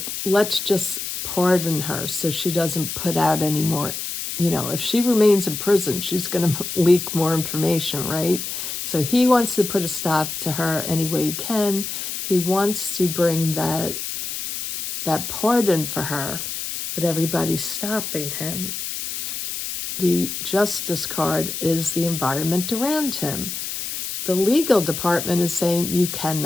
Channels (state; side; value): noise; left; hiss, 5 dB below the sound